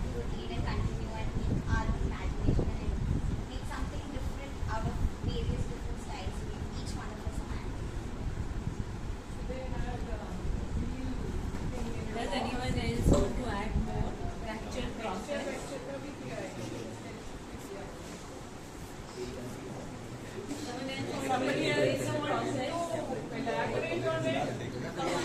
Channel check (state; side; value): identical; both; correlation 1.00